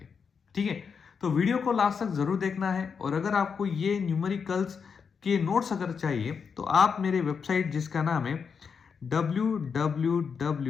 ठीक है, तो वीडियो को लास्ट तक जरूर देखना है। और अगर आपको ये न्यूमेरिकल्स के नोट्स अगर चाहिए तो आप मेरे वेबसाइट जिसका नाम है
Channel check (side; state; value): right; quieter; 6.1 dB